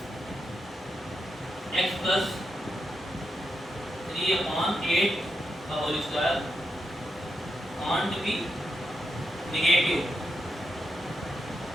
x प्लस 3/8 का whole square can't be negative,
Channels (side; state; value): both; normal; correlation 0.85